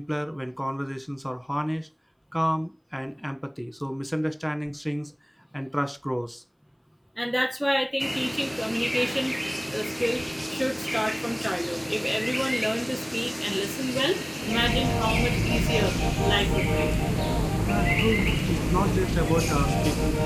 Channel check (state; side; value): identical; both; correlation 1.00